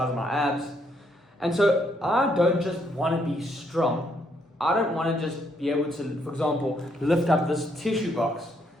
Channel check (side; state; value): both; normal; correlation 0.73